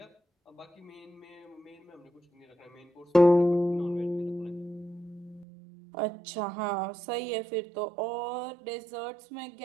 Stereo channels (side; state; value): left; drops out; at 5.5 s